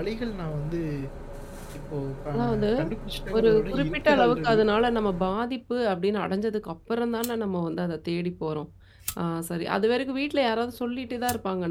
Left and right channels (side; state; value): both; identical; correlation 1.00